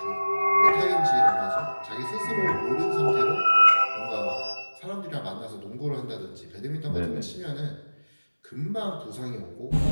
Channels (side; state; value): both; inverted; correlation -1.00